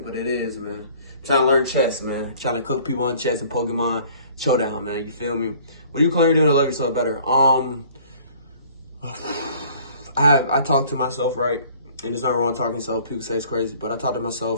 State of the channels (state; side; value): inverted; both; correlation -0.54